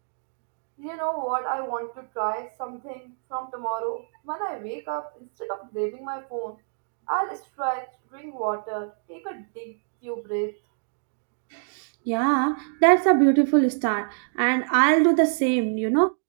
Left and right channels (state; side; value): silent; left; digital silence